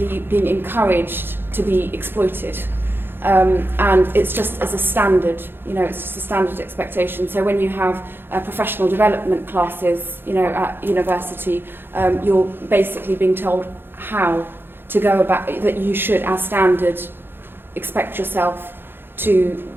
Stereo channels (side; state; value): left; late; 0.10 ms